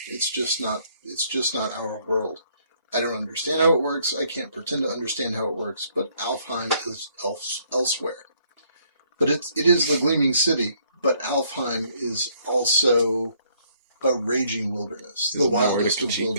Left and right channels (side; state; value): both; inverted; correlation -0.67